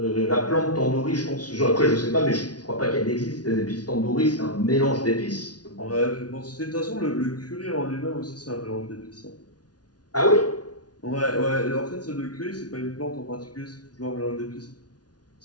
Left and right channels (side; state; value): right; late; 0.69 ms